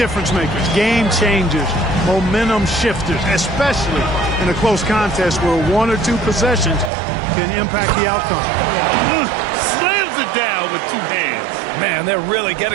makers, game changers, momentum shifters, especially in a close contest where one or two possessions can impact the outcome. Slams it down with two hands. Man, they're really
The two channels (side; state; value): left; drops out; at 6.9 s